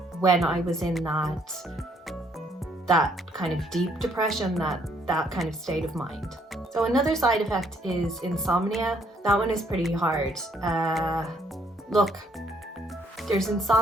when I was in that kind of deep depression, that kind of state of mind. So another side effect is insomnia. That one is pretty hard. Look, there's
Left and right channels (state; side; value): normal; both; correlation 0.68